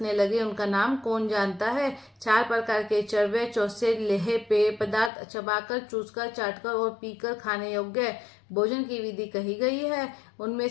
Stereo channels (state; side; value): drops out; right; at 5.1 s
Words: लगे, उनका नाम कौन जानता है। 4 प्रकार के चरवे चौसे लेहे पेय पदार्थ चबाकर, चूसकर, चाटकर और पीकर खाने योग्य भोजन की विधि कही गई है। उनमें